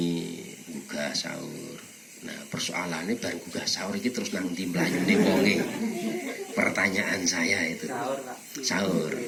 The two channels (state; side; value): identical; both; correlation 1.00